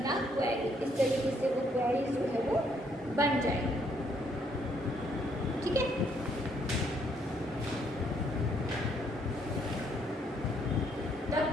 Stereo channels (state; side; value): normal; both; correlation 0.70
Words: क्वेरी, इस तरीके से वो क्वेरी जो है वो बन जाएगी। ठीक है, the